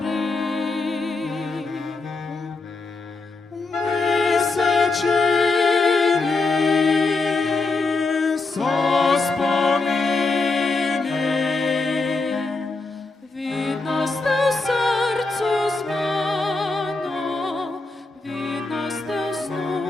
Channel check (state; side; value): quieter; right; 3.6 dB